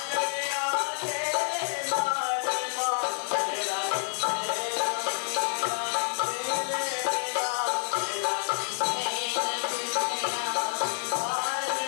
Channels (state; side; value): silent; right; digital silence